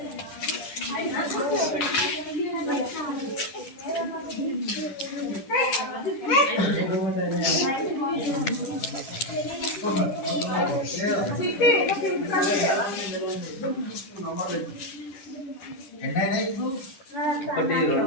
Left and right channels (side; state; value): right; late; 9.8 ms